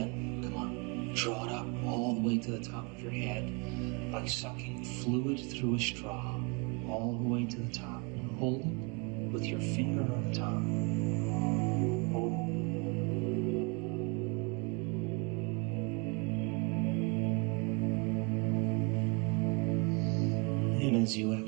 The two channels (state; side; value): quieter; left; 31.8 dB